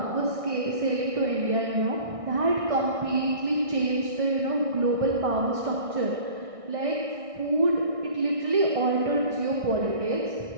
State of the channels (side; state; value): left; late; 1.6 ms